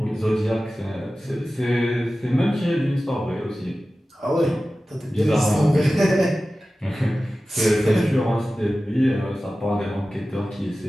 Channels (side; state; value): both; normal; correlation 0.95